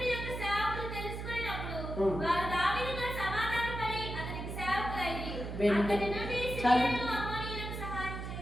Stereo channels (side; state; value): right; noise; hum, 6 dB below the sound